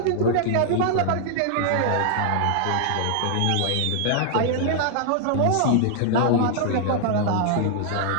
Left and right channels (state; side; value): different; both; correlation 0.00